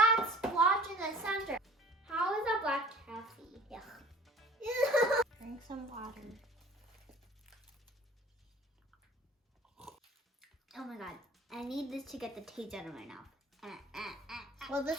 splotch in the center. How is that black taffy? Yuck. Drink some water. Oh my god. I need this to get the taste out of my mouth. Well, this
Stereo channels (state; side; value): normal; both; correlation 0.47